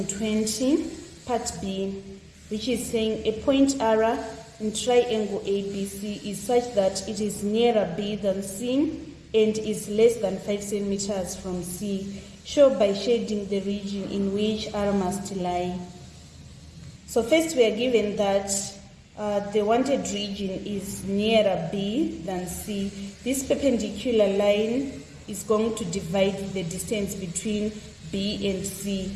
part B, which is saying a point R in triangle ABC is such that it is nearer B than C and is less than 5 centimeters from C. Show by shading the region in which R must lie. So first we are given that the wanted region is nearer B than C. This perpendicular line is going to divide the distance between B and C.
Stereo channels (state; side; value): identical; both; correlation 1.00